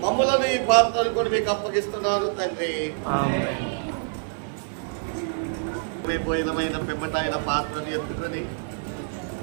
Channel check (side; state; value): left; silent; 59 dB below the other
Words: మమ్మలను ఈ పాత్రను కూడా మీకు అప్పగిస్తున్నాను తండ్రి. పోయినమైన పిమ్మట ఆయన పాత్రను ఎత్తుకొని